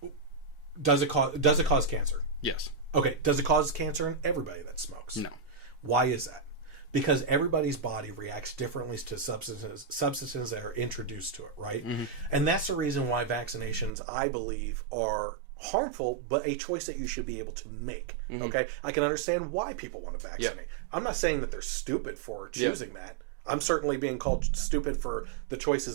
Does it cause cancer? Yes. Okay. Does it cause cancer in everybody that smokes? No. Why is that? Because everybody's body reacts differently to substances that are introduced to it, right? And that's the reason why vaccinations, I believe, are harmful, but a choice that you should be able to make. Okay, I can understand why people want to vaccinate. I'm not saying that they're stupid for choosing that. I'm certainly being called stupid for the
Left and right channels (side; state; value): left; drops out; at 13.9 s